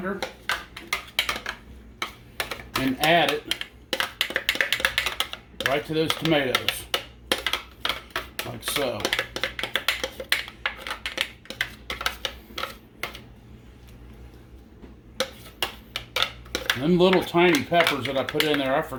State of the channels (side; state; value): both; identical; correlation 1.00